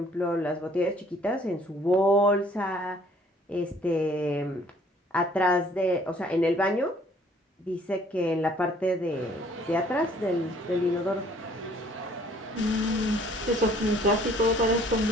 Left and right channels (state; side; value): normal; both; correlation 0.58